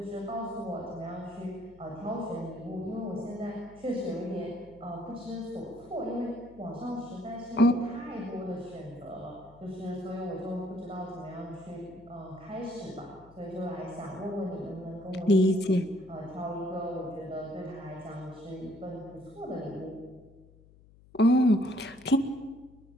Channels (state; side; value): noise; left; hum, 24 dB below the sound